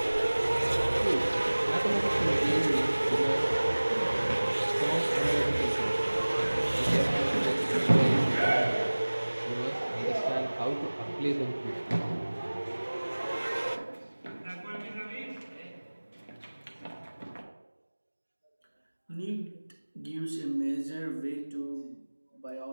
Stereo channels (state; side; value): inverted; both; correlation -1.00